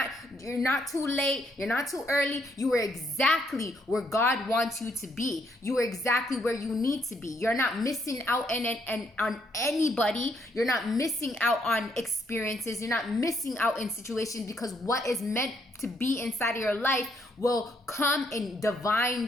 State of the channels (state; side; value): normal; both; correlation 0.72